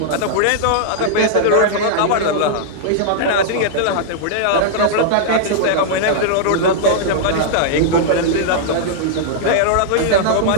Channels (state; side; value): different; both; correlation -0.02